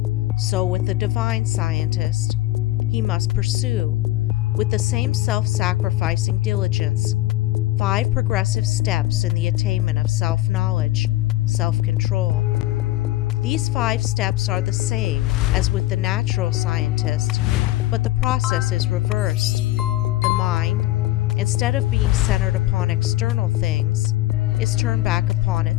so with the divine scientist, he must pursue, with the same self-sacrificing diligence, 5 progressive steps in the attainment of self-knowledge, self-control. These 5 steps are the same as with the natural scientist, but the process is reversed. The mind, instead of being centered upon external things, is turned back upon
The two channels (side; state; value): right; quieter; 16.2 dB